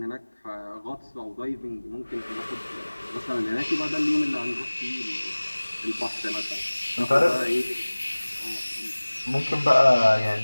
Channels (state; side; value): inverted; both; correlation -1.00